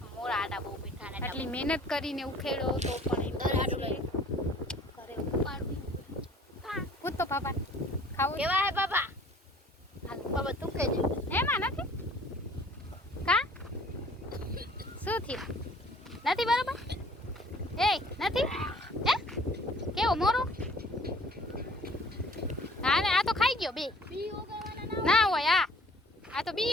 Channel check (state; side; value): normal; both; correlation 0.53